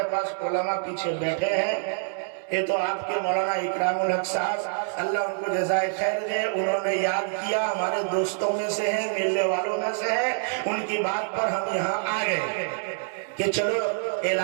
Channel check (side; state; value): left; silent; 61 dB below the other